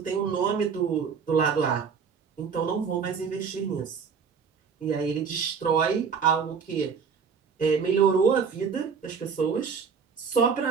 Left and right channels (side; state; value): left; quieter; 6.1 dB